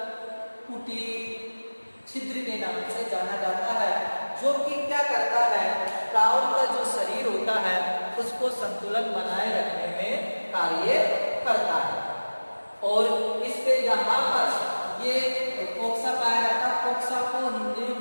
कुटी छिद्र के नाम से जाना जाता है, जो कि क्या करता है? प्राउड का जो शरीर होता है उसको संतुलन बनाए रखने में कार्य करता है। और इसके यहाँ पर ये कोक्सा पाया जाता है। कोक्सा को हिंदी में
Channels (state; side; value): inverted; both; correlation -1.00